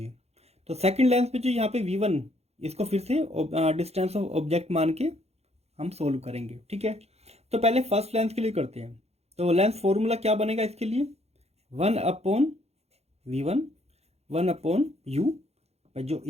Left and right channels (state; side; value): late; left; 0.31 ms